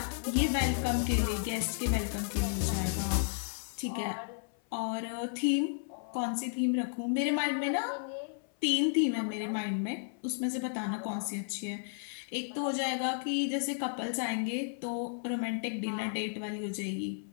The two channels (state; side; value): silent; right; 56 dB below the other